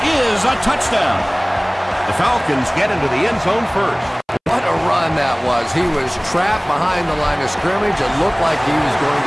is a touchdown. The Falcons get into the end zone first. What a run that was. He was trapped behind the line of scrimmage. It looked like he was going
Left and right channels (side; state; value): both; identical; correlation 1.00